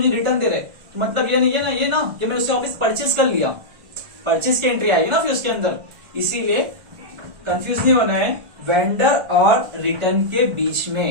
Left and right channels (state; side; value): late; left; 1.4 ms